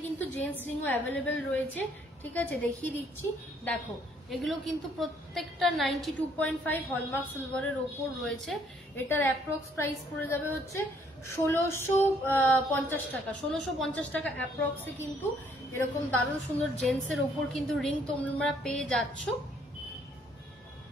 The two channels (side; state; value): both; normal; correlation 0.65